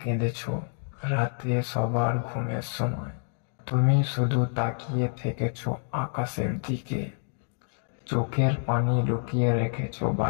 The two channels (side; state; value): right; silent; digital silence